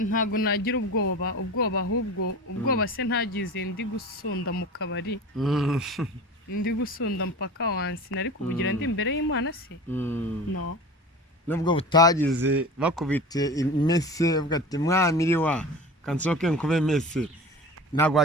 Ntago nagira ubwoba, ahubwo ubwoba se ntagize ndi gusunda mu kabari, ndi gusunda mpaka wansi, nari kubugira ndi imbere y'Imana se? No. Nubwo butagize bakubite imese uvuga ati mwamiri wa kansoke nkube mese, ntabwo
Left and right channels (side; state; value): both; normal; correlation 0.34